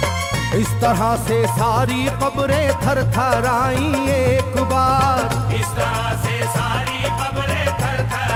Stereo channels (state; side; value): identical; both; correlation 1.00